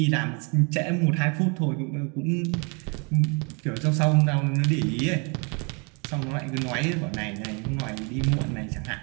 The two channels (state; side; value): quieter; left; 33.2 dB